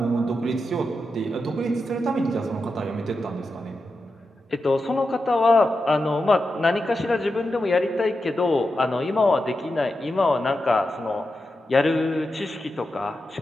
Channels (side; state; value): both; normal; correlation 0.89